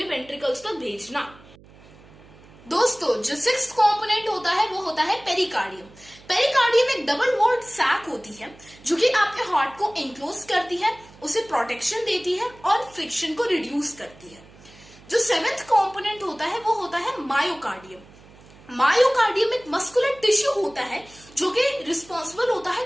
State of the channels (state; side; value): noise; right; hum, 23 dB below the sound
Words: वेंट्रिकल्स तक भेजना। दोस्तों, जो 6th कंपोनेंट होता है वो होता है पेरिकार्डियम। पेरिकार्डियम एक डबल वॉल्ड सैक होती है जो कि आपके हार्ट को एनक्लोज करती है, उसे प्रोटेक्शन देती है और फ्रिक्शन को रिड्यूस करती है। जो 7th कंपोनेंट होता है वो होता है मायोकार्डियम। मायोकार्डियम एक मस्कुलर टिश्यू होता है जो कि रिस्पॉन्सिबल होता है